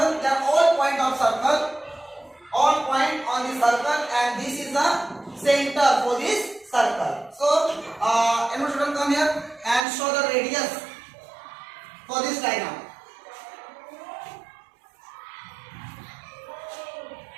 they are all point of circle, all point on the circle and this is the center for this circle. So anyone student come here and show the radius for this diagram.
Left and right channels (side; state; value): left; drops out; at 9.9 s